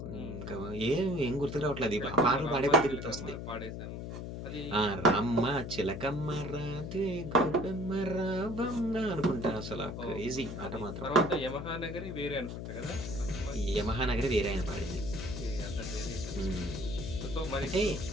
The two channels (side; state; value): left; noise; hum, 7 dB below the sound